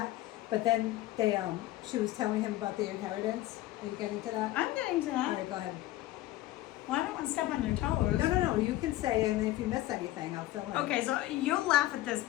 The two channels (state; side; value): quieter; right; 16.0 dB